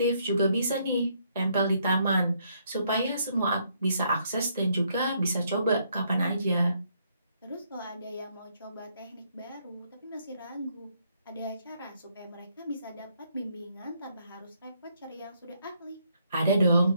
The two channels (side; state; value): both; inverted; correlation -0.72